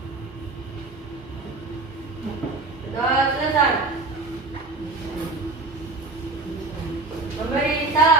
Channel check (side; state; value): left; quieter; 3.4 dB